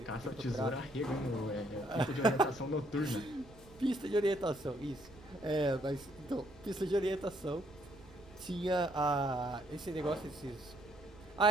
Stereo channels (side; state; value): right; noise; rumble, 22 dB below the sound